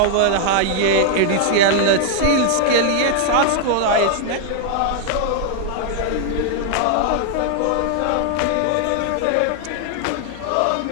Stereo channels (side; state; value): both; different; correlation 0.00